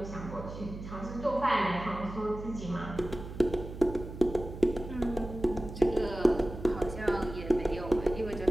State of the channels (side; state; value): right; noise; hum, 11 dB below the sound